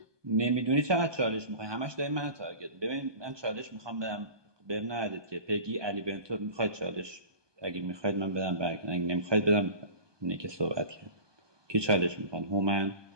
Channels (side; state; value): left; late; 1.2 ms